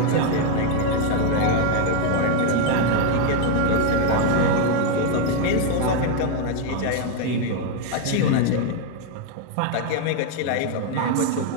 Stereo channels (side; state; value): both; different; correlation 0.01